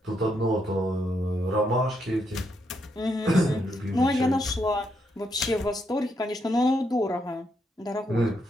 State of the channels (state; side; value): normal; both; correlation 0.78